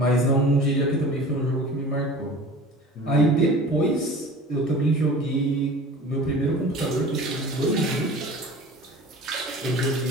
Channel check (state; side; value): normal; both; correlation 0.40